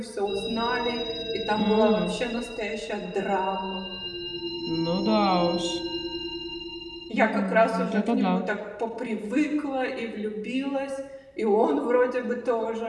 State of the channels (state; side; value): identical; both; correlation 1.00